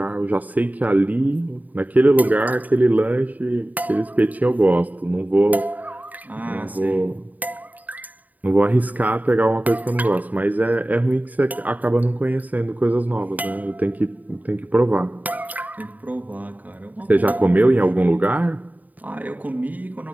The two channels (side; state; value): left; late; 0.078 ms